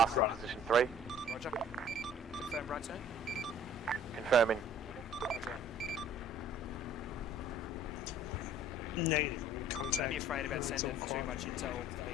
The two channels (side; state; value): both; normal; correlation 0.52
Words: position 3. Roger. Confirm right turn. Confirming. Roger. Negative. Don't Contact. be afraid about It's all sending too quiet. much intel for